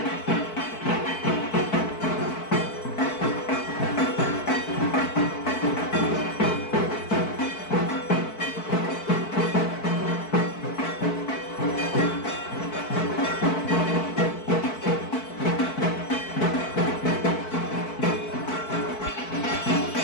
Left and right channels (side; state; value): right; late; 4.6 ms